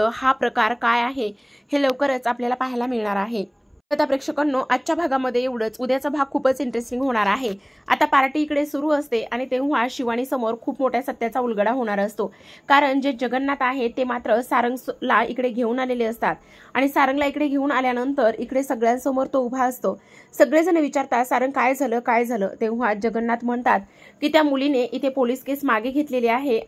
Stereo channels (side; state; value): both; identical; correlation 1.00